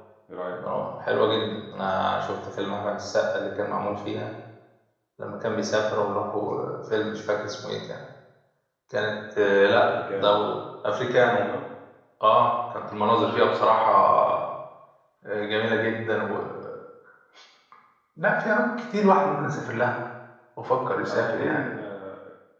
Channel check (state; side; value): identical; both; correlation 1.00